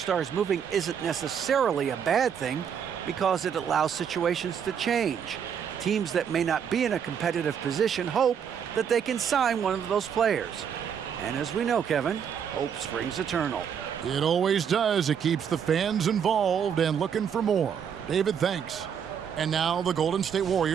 moving isn't necessarily a bad thing because it allows situations to change. Teams that may not be in a competitive position hope that they can sign one of those players. And as we know, Kevin, hope springs eternal. It always does. It keeps the fans involved and looking for more. David, thanks. And now the Golden State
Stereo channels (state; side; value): quieter; left; 7.8 dB